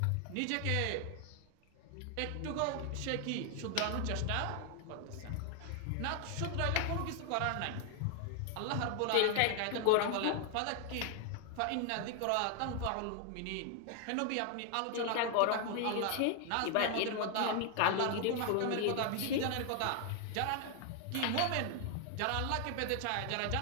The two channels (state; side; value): different; both; correlation 0.00